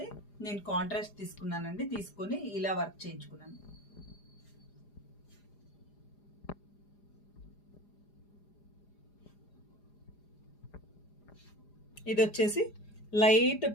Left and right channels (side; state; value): right; late; 4.9 ms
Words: నేను కాంట్రాస్ట్ తీసుకున్నానండి. తీసుకొని ఇలా వర్క్ చేయించుకున్నాను. ఇది వచ్చేసి లైట్